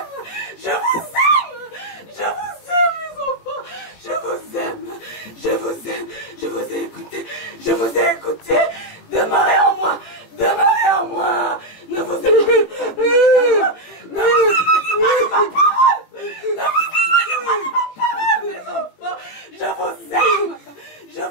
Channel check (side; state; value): right; late; 18 ms